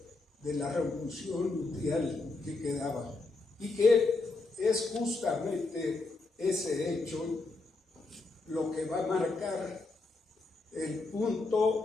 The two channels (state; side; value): quieter; right; 3.5 dB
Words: de la revolución mundial que quedaba, y que es justamente ese hecho lo que va a marcar el